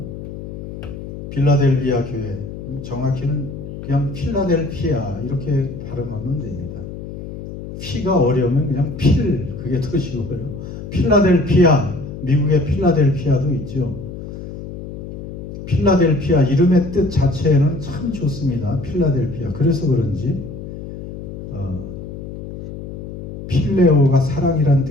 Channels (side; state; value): left; noise; hum, 10 dB below the sound